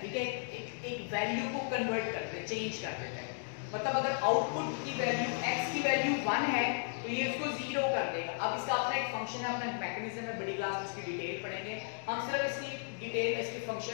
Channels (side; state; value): right; silent; 54 dB below the other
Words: है, एक वैल्यू को कन्वर्ट करते हैं, चेंज कर देते हैं। मतलब अगर आउटपुट की वैल्यू x की वैल्यू 1 है तो ये इसको 0 कर देगा। अब इसका अपना एक फंक्शन है, अपना मैकेनिज्म है, बड़ी क्लास में इसकी डिटेल पढ़ेंगे हम। सिर्फ इसकी डिटेल, इसके